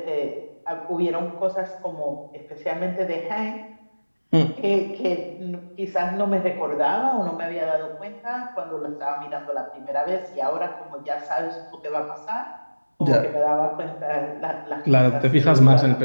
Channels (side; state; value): both; inverted; correlation -1.00